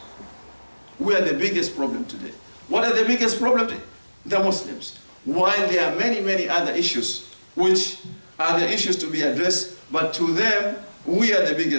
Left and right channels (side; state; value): both; inverted; correlation -1.00